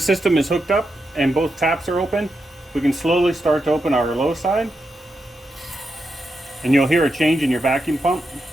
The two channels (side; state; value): both; normal; correlation 0.86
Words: system is hooked up and both taps are open, we can slowly start to open our low side. And you'll hear a change in your vacuum pump.